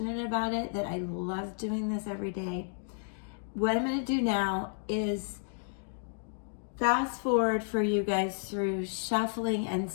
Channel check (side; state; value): right; silent; digital silence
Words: about it that I love doing this every day. What I'm going to do now is fast forward for you guys through shuffling and